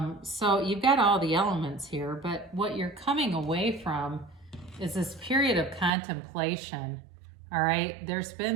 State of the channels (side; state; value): left; drops out; at 5.9 s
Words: So you've got all the elements here, but what you're coming away from is this period of contemplation, all right? There's